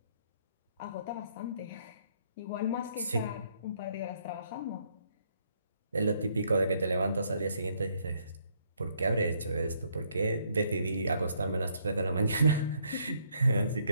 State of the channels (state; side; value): inverted; both; correlation -0.70